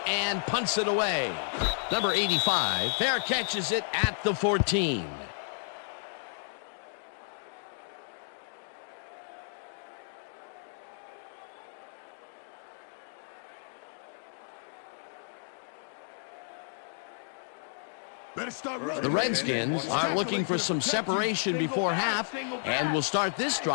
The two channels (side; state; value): right; silent; digital silence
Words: and punts it away. Number 85, fair catches it at the 14. The Redskins are looking for some separation before half and will start this